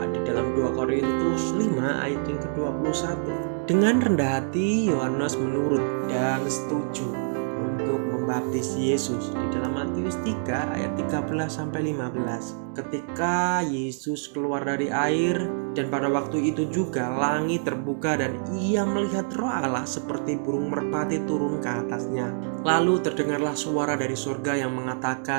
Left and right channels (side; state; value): left; silent; digital silence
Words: di dalam 2 Korintus 5 ayat yang ke-21. Dengan rendah hati Yohanes menurut dan setuju untuk membaptis Yesus di dalam Matius 3 ayat 13-15. Ketika Yesus keluar dari air, dan pada waktu itu juga langit terbuka dan ia melihat Roh Allah seperti burung merpati turun ke atasnya. Lalu terdengarlah suara dari surga yang